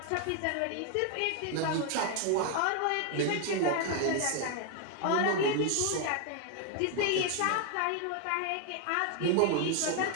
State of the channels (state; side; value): different; both; correlation 0.00